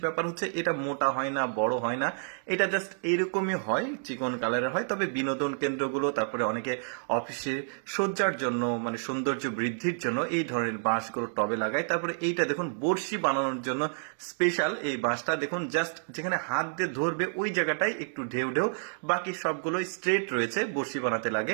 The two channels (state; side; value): silent; left; digital silence